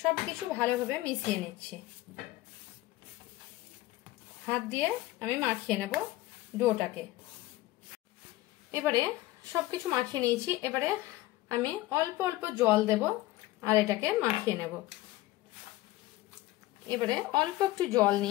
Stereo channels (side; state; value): right; quieter; 17.3 dB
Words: সবকিছু ভালোভাবে মিশিয়ে নিচ্ছি। হাত দিয়ে আমি মাখিয়ে নেব ডোটাকে। এবারে সবকিছু মাখিয়ে নিয়েছি। এবারে আমি অল্প অল্প জল দেব আর এটাকে মাখিয়ে নেব। এবারে অল্প একটু জল